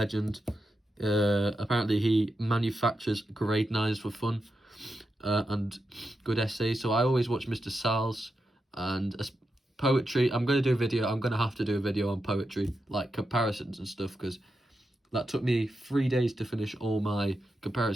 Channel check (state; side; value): normal; both; correlation 0.87